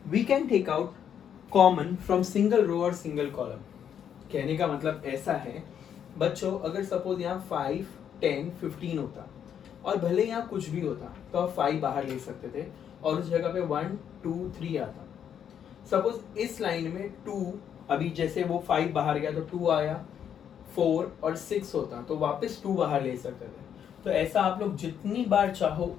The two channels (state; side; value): quieter; right; 8.8 dB